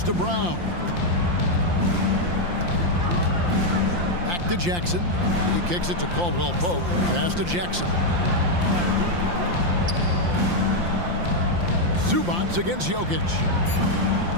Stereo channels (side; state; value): left; late; 5.8 ms